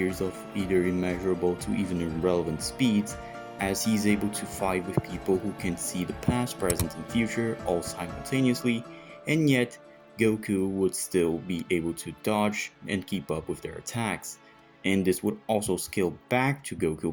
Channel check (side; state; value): both; identical; correlation 1.00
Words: of either immeasurable to even irrelevant speeds, as he is able to fight with people who can see the past, present, and future all simultaneously, and yet Goku would still be able to dodge and keep up with their attacks. and this would also scale back to